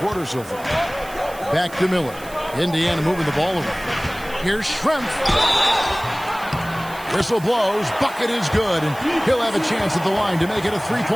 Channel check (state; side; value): noise; right; hiss, 18 dB below the sound